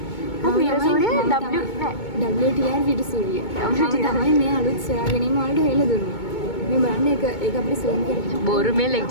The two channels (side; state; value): right; late; 2.2 ms